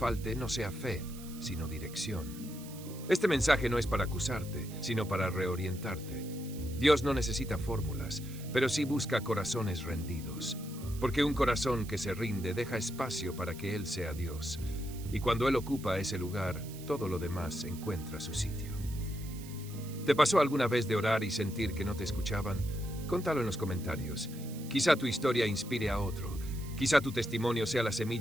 no sea fe, sino dirección. Este mensaje no es para acusarte, sino para reorientarte. Dios no necesita fórmulas, pero sí busca corazones rendidos. Porque un corazón que se rinde deja espacio para que Él sea Dios. Y cuando Él ocupa ese lugar, todo lo demás encuentra su sitio. ¿Te pasó alguna vez de orar y sentir que no te escuchaban? Contalo en los comentarios. Quizá tu historia inspire a otro. Quizá tu testimonio sea la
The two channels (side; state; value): right; noise; hiss, 17 dB below the sound